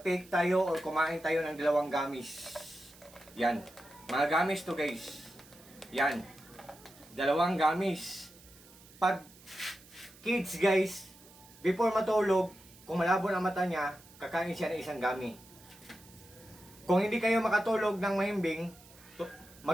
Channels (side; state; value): right; noise; hiss, 23 dB below the sound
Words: tayo or kumain tayo ng dalawang gummies. Yan. Mga gamis to guys. Yan. Dalawang gamis. Pag kids guys, before matulog, kung malabo na mata niya, kakain siya ng isang gami. Kung hindi kayo makatulog ng mahimbing,